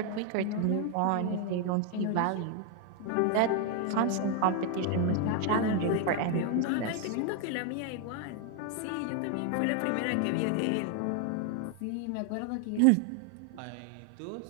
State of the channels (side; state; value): both; different; correlation 0.01